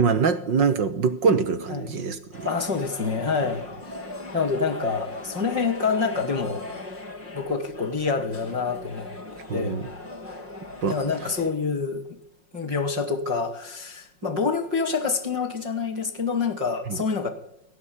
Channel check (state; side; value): late; left; 5.5 ms